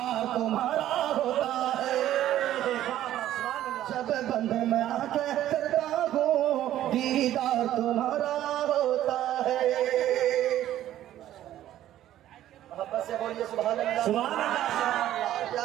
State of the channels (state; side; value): quieter; left; 12.7 dB